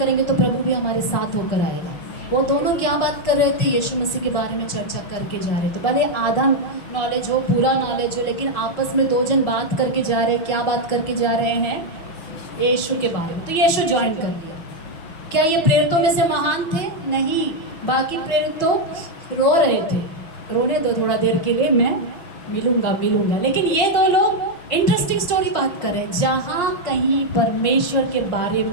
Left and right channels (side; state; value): right; late; 6.0 ms